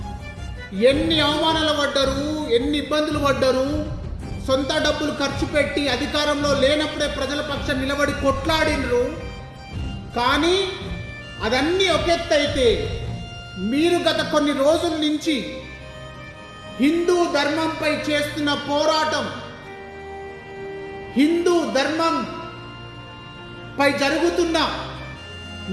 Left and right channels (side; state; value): both; identical; correlation 1.00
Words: ఎన్ని అవమానాలు పడ్డారు, ఎన్ని ఇబ్బందులు పడ్డారు, సొంత డబ్బులు ఖర్చు పెట్టి అధికారంలో లేనప్పుడే ప్రజల పక్షం నిలబడి కొట్లాడినరు. కానీ అదన్నీ ఒక ఎత్తు అయితే, మీరు గత కొన్ని రోజుల నుంచి హిందూ ధర్మంపై చేస్తున్న పోరాటం, హిందూ ధర్మం పై జరుగుతున్న